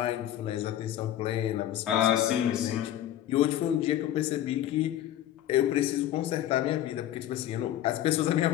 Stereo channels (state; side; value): quieter; right; 12.2 dB